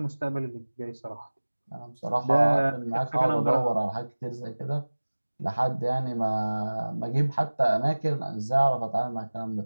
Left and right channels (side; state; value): both; inverted; correlation -1.00